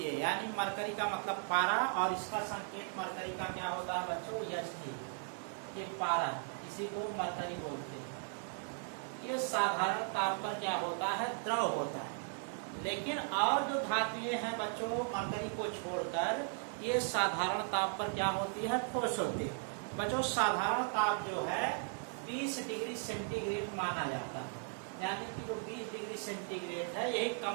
यानी मरकरी का मतलब पारा और इसका संकेत मरकरी का क्या होता है बच्चों, Ht। ये पारा, इसी को मरकरी बोलते हैं। ये साधारण ताप पर क्या होता है, द्रव होता है। लेकिन और जो धातुएं हैं बच्चों मरकरी को छोड़कर ये साधारण ताप पर क्या होती है, ठोस होती है। बच्चों साधारण ताप जो है 20 डिग्री सेंटीग्रेड माना जाता है, यानी कि जो 20 डिग्री सेंटीग्रेड है यही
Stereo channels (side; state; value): left; silent; 53 dB below the other